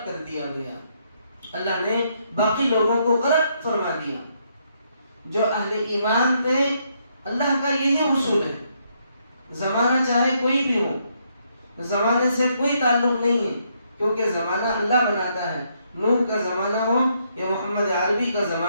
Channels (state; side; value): inverted; both; correlation -0.74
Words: کر دیا گیا، اللہ نے باقی لوگوں کو غرق فرما دیا۔ جو اہل ایمان تھے، اللہ کا یہی اصول ہے، زمانہ چاہے کوئی بھی ہو، زمانے سے کوئی تعلق نہیں ہے، کیونکہ زمانہ اللہ بناتا ہے۔ نوح کا زمانہ ہو یا محمد عربی کا